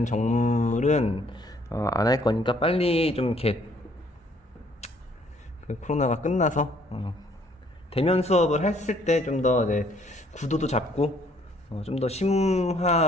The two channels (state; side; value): normal; both; correlation 0.63